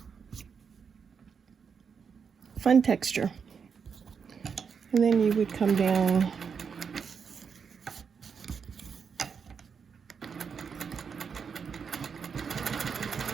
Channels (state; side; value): quieter; left; 6.3 dB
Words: Fun texture. And then you would come down